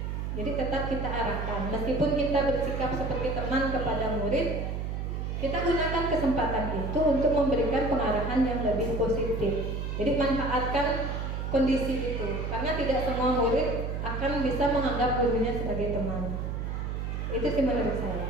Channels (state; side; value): noise; right; hum, 3 dB below the sound